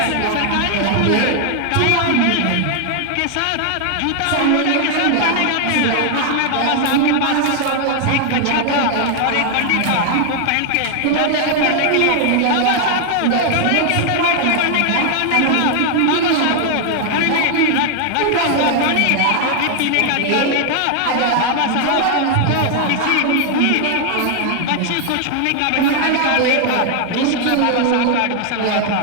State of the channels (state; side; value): different; both; correlation 0.00